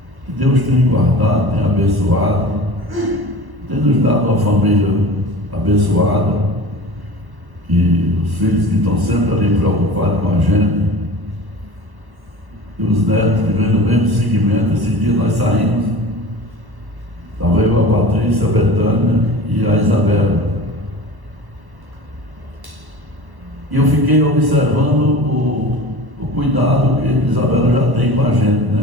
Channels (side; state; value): left; late; 1.1 ms